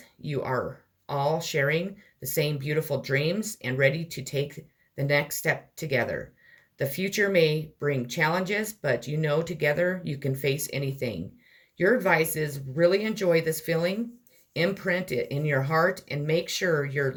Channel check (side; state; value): both; identical; correlation 1.00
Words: You are all sharing the same beautiful dreams and ready to take the next step together. The future may bring challenges, but you know together you can face anything. Your advice is really enjoy this feeling, imprint it in your heart, and make sure your